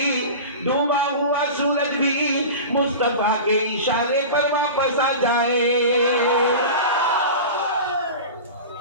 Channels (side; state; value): both; inverted; correlation -0.31